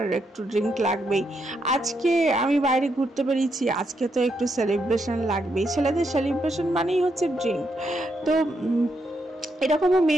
একটু ড্রিঙ্ক লাগবেই, আজকে আমি বাইরে ঘুরতে বেরিয়েছি, আজকে তো একটু সেলিব্রেশন লাগবেই। ছেলেদের সেলিব্রেশন মানেই হচ্ছে ড্রিঙ্ক। তো এরকমও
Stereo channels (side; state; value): both; normal; correlation 0.80